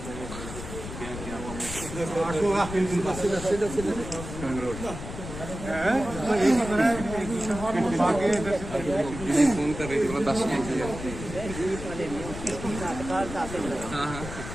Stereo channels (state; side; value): noise; left; rumble, 9 dB below the sound